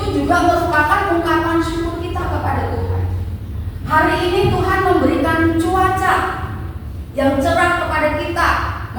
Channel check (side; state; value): both; identical; correlation 1.00